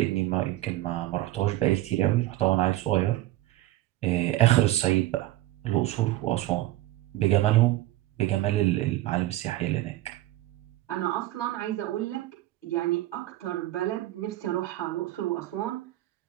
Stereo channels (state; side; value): quieter; left; 15.9 dB